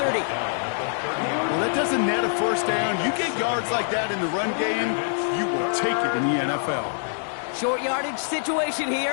Well, that doesn't net a 1st down. You get yards like that in the run game, you will take it in the NFL. Short yardage situation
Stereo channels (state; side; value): silent; right; digital silence